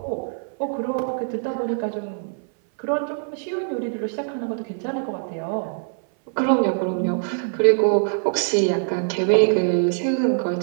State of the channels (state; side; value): silent; left; 59 dB below the other